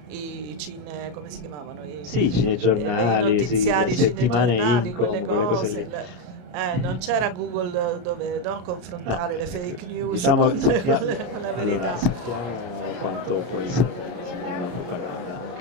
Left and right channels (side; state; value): left; late; 33 ms